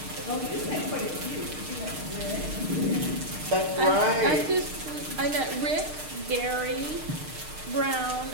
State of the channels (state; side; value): late; left; 6.5 ms